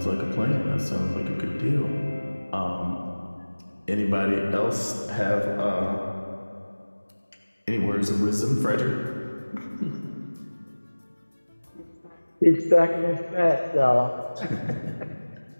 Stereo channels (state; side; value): inverted; both; correlation -1.00